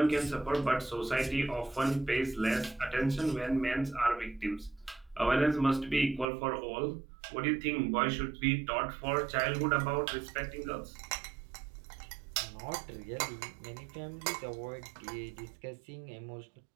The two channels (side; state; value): left; drops out; at 6.2 s